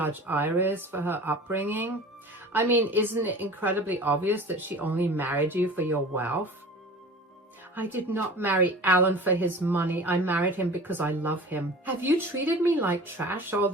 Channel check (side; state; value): both; normal; correlation 0.40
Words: Iris for her upbringing. I mean, isn't it incredibly obvious that she only married you for your wealth?" "I did not marry Alan for his money. I married him because I love him. Have you treated me like trash all